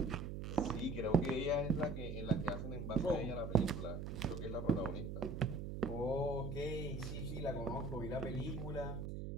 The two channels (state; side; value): noise; right; hum, 5 dB below the sound